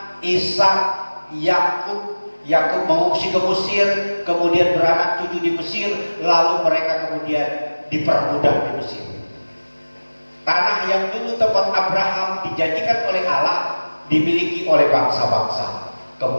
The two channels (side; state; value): both; inverted; correlation -1.00